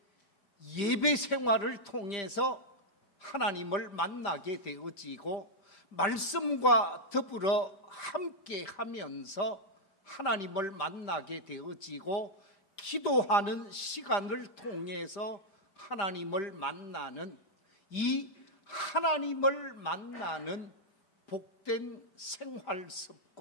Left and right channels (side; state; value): right; late; 5.0 ms